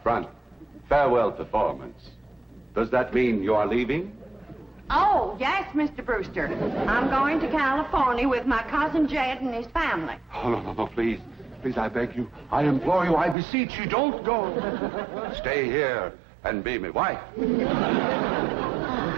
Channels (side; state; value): left; drops out; at 13.4 s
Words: front. Farewell performance. Does that mean you are leaving? Oh, yes, Mr. Brewster. I'm going to California with my cousin Jed and his family. Oh, no, please. Please, I beg you. I implore you. I beseech you. Don't go. Stay here and be my wife.